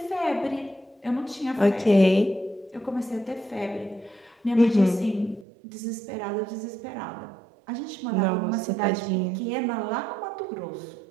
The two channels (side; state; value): left; drops out; at 5.5 s